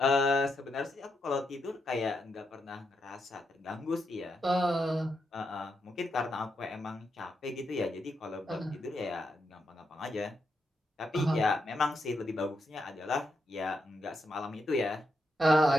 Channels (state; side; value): normal; both; correlation 0.82